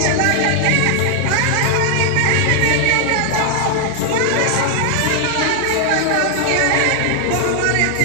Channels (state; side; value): different; both; correlation 0.00